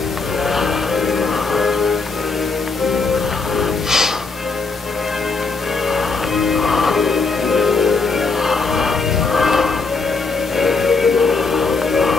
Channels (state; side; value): quieter; right; 4.2 dB